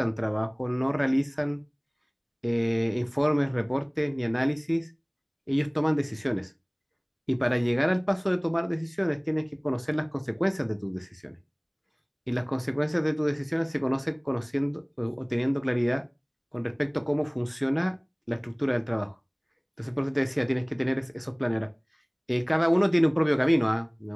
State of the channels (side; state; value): both; identical; correlation 1.00